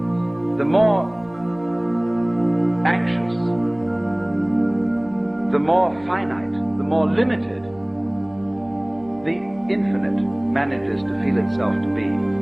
the more anxious, the more finite, the more limited the infinite manages to feel itself to be,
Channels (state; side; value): noise; right; hum, 29 dB below the sound